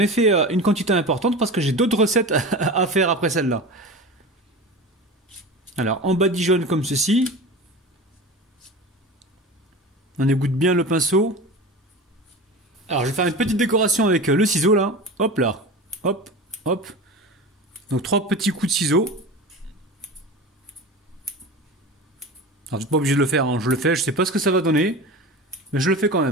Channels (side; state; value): both; normal; correlation 0.31